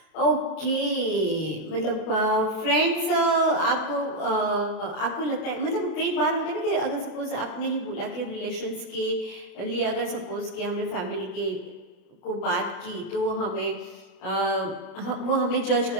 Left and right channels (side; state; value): right; late; 32 ms